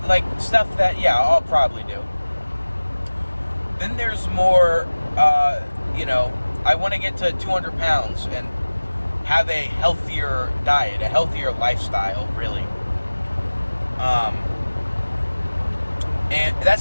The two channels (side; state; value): both; inverted; correlation -1.00